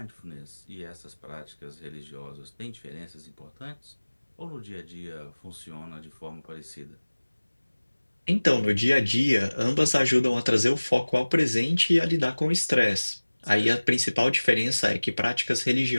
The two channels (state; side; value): inverted; both; correlation -1.00